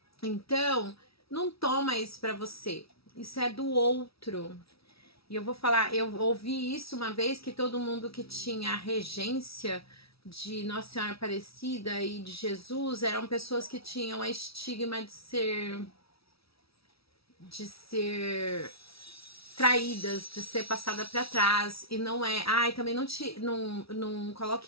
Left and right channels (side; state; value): right; late; 0.76 ms